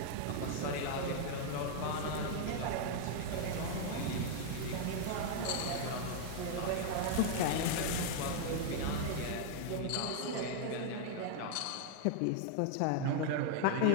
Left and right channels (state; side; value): different; both; correlation 0.00